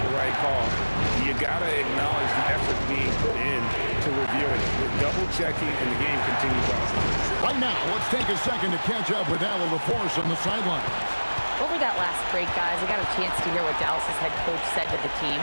the right call, you got to acknowledge the effort being put in to reviewing it. We're double-checking, and the game continues on. Right now, let's take a second to catch up with Al LaForce on the sideline. Over that last break, guys, I got a chance to hear what Dallas's head coach said to the team.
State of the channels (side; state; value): both; inverted; correlation -1.00